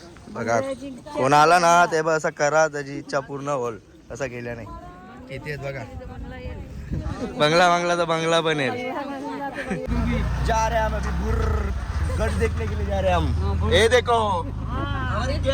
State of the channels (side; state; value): both; identical; correlation 1.00